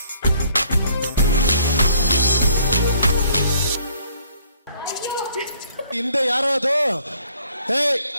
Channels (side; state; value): both; inverted; correlation -0.61